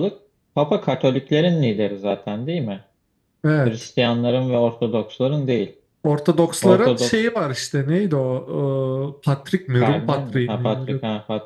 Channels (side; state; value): both; identical; correlation 1.00